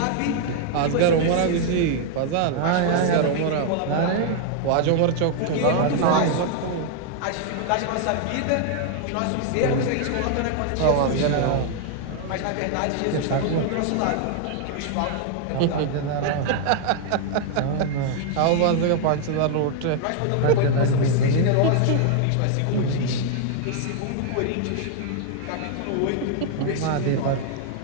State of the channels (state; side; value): different; both; correlation 0.00